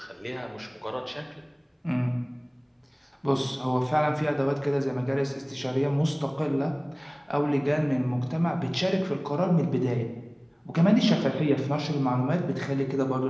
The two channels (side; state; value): both; identical; correlation 1.00